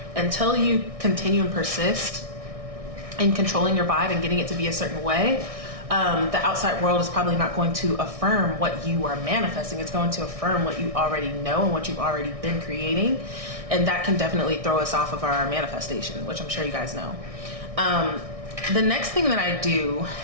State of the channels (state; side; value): late; left; 1.6 ms